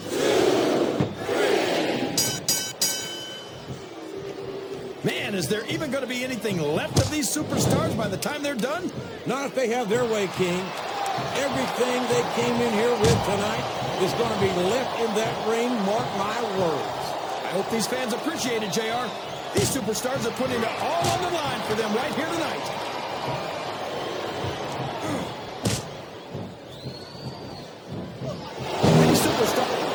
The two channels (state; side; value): identical; both; correlation 1.00